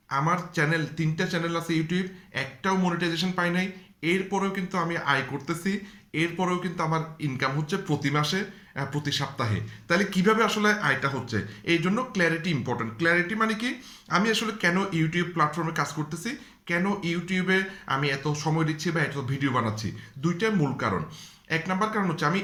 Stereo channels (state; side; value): identical; both; correlation 1.00